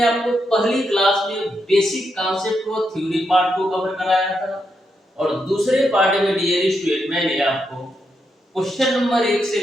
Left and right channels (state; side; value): normal; both; correlation 0.82